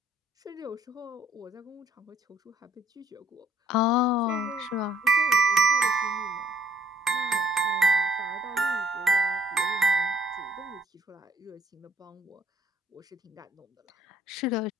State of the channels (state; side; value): normal; both; correlation 0.62